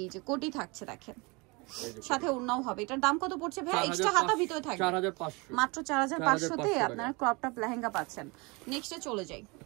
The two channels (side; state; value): left; quieter; 27.3 dB